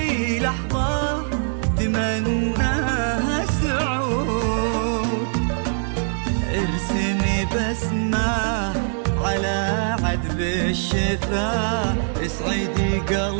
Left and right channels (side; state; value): left; silent; 64 dB below the other